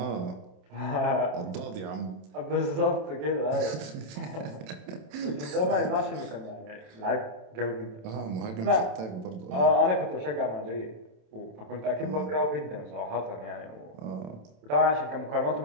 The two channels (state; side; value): late; left; 27 ms